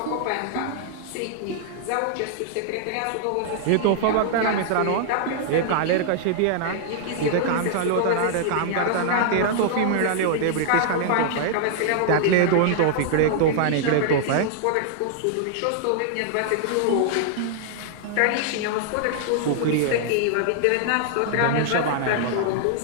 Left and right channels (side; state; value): both; different; correlation -0.01